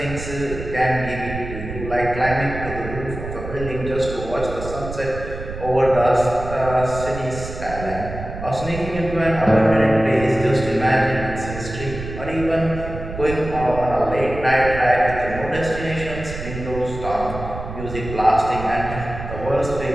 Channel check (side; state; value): right; noise; rumble, 9 dB below the sound